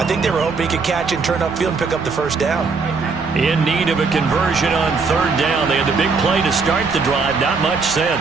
think they were hoping he could catch and turn upfield and pick up the first down. In need of a conversion on third down. They had the big play to start the drive. Not much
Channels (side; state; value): left; quieter; 4.6 dB